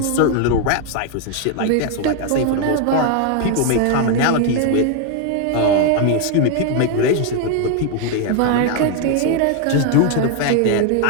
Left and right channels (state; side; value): different; both; correlation 0.00